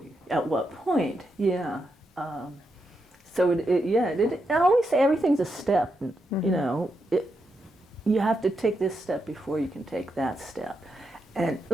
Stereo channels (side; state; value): both; normal; correlation 0.84